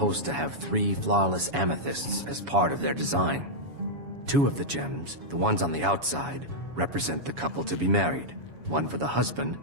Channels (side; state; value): left; late; 7.1 ms